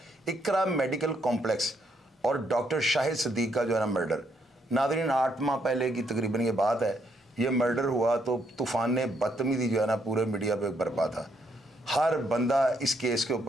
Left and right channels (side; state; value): both; normal; correlation 0.74